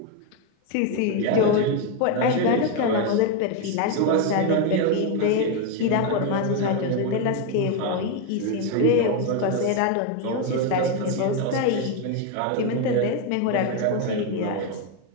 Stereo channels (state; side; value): different; both; correlation 0.02